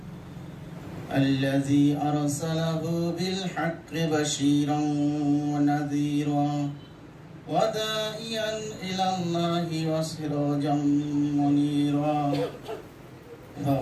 الذي أرسله بالحق بشيرا ونذيرا وداعيا إلى الله وسراجا منيرا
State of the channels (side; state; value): both; identical; correlation 1.00